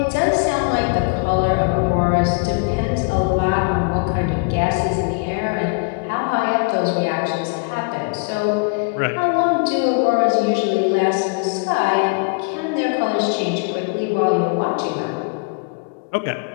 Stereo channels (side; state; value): right; quieter; 31.5 dB